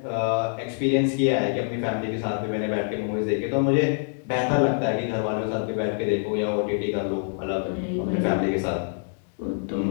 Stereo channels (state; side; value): silent; right; digital silence